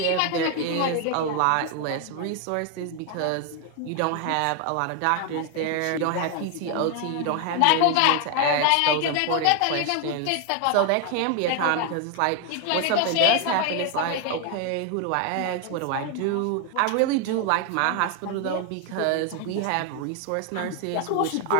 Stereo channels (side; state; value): both; different; correlation 0.00